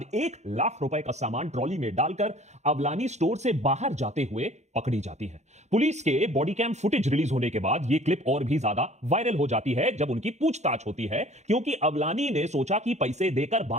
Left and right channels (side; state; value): left; late; 0.33 ms